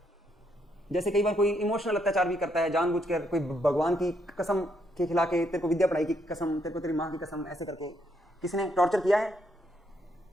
जैसे कई बार कोई इमोशनल अत्याचार भी करता है जानबूझकर, कोई भगवान की कसम के खिला के, तेरे को विद्या पढ़ाई की कसम, तेरे को तेरी माँ की कसम, ऐसे करके किसी ने टॉर्चर किया है?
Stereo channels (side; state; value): both; normal; correlation 0.75